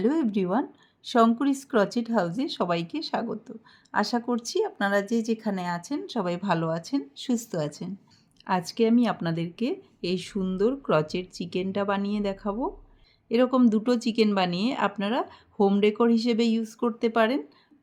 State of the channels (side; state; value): both; identical; correlation 1.00